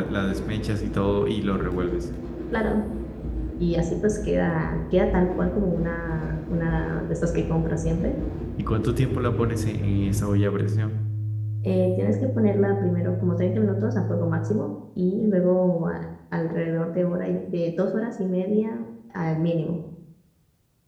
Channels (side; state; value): both; identical; correlation 1.00